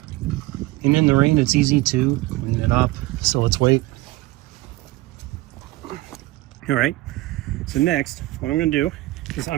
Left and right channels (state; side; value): quieter; left; 19.0 dB